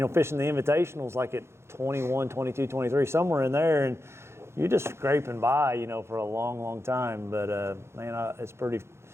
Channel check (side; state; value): left; late; 0.13 ms